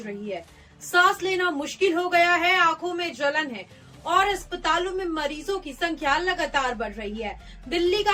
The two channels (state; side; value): identical; both; correlation 1.00